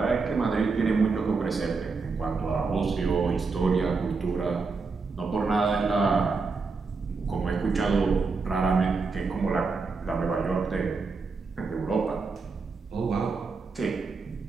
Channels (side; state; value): left; quieter; 4.4 dB